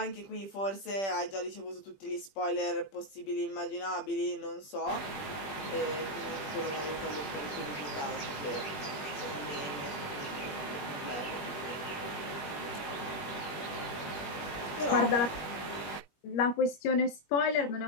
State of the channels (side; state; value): right; late; 20 ms